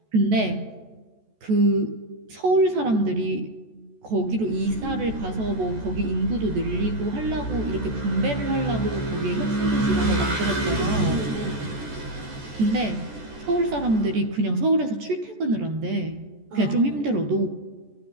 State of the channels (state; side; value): late; left; 14 ms